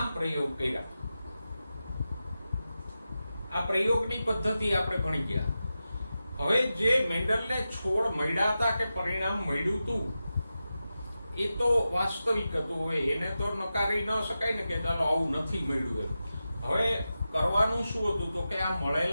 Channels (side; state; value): both; inverted; correlation -0.92